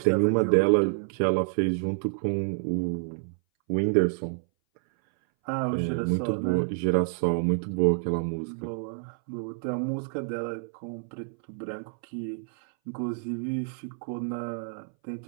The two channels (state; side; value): silent; left; 59 dB below the other